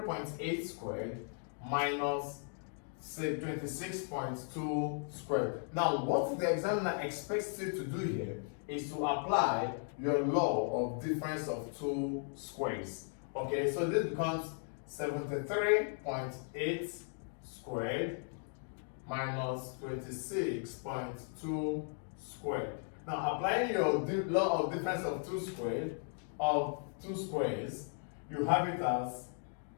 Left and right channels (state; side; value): silent; right; 53 dB below the other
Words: squared minus 26.2 squared. Now, what the examiner expects you to do here is to apply your law of difference of two squares. Okay, so this becomes 73.8 squared minus 26.2 squared. Now, applying your law of difference of two squares, you have it as